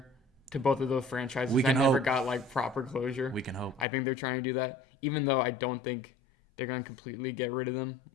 to both of those franchises We that can never hope. got like proper closure. We can hope. I think they're trying to do that, even though I don't think they're gonna completely get rid of them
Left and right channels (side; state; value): right; drops out; at 3.9 s